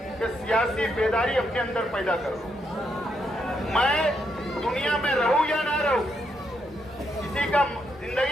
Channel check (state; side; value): normal; both; correlation 0.78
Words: कि सियासी बेदारी अपने अंदर पैदा करो। मैं दुनिया में रहूं या ना रहूं, किसी का